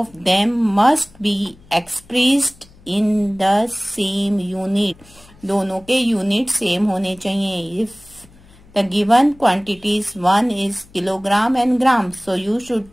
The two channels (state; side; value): noise; left; hum, 26 dB below the sound